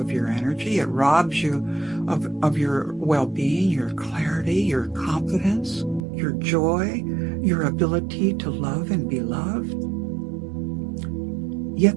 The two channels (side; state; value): left; drops out; at 6.0 s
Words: your energy. It robs you of your well-being, your clarity, your confidence, your joy, your ability to love and be loved.